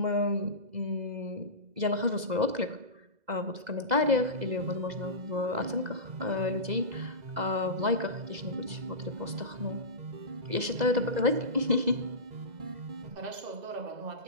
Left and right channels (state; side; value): late; left; 2.0 ms